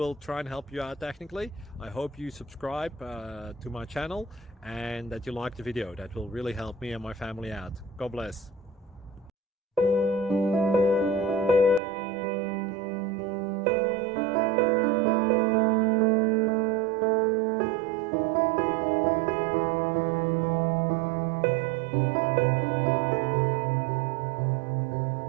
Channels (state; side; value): drops out; left; at 11.8 s